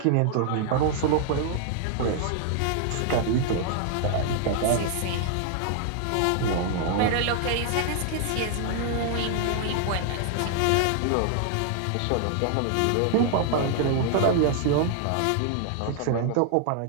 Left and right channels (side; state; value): both; different; correlation 0.00